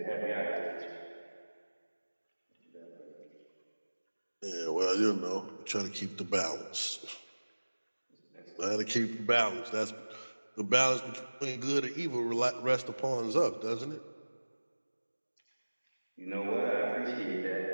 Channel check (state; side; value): inverted; both; correlation -1.00